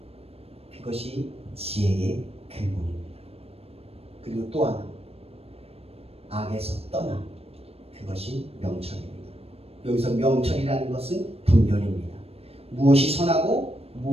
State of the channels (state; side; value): late; left; 0.29 ms